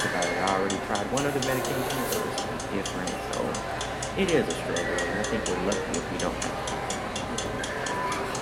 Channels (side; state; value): both; identical; correlation 1.00